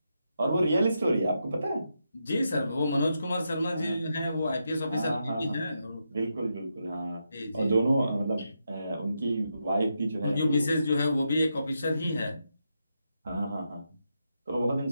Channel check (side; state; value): both; inverted; correlation -0.84